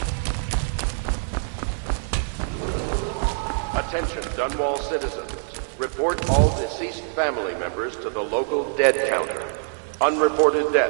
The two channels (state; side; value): silent; left; 62 dB below the other